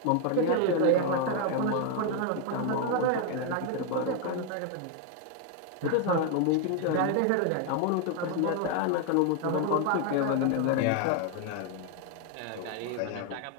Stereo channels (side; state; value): both; different; correlation 0.01